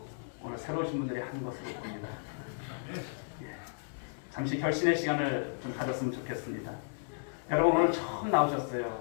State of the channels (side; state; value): right; silent; digital silence